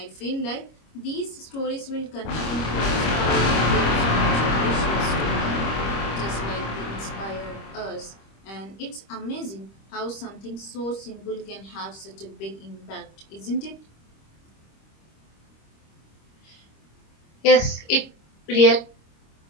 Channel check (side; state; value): right; late; 26 ms